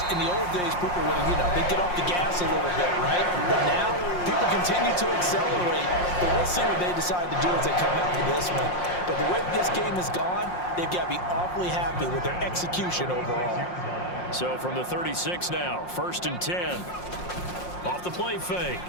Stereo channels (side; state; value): right; late; 5.6 ms